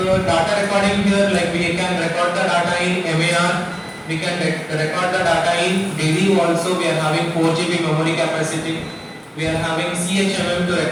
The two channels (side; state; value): both; identical; correlation 1.00